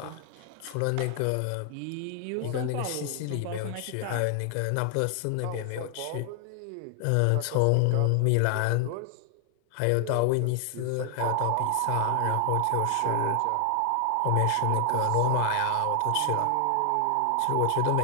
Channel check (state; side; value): different; both; correlation 0.00